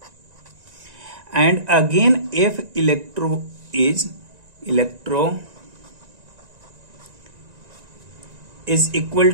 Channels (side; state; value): left; late; 1.9 ms